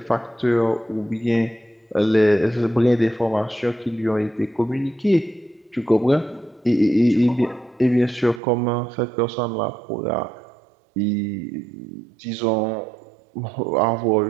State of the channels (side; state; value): left; drops out; at 8.4 s